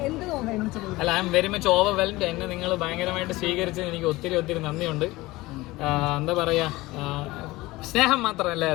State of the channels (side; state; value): right; quieter; 19.9 dB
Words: അല്ല, I am very much overwhelmed. എന്നെ നിങ്ങൾ ഭയങ്കരമായിട്ട് സ്വീകരിച്ചത് എനിക്ക് ഒത്തിരി ഒത്തിരി നന്ദിയുണ്ട്. എന്താ പറയാ, സ്നേഹം മാത്രം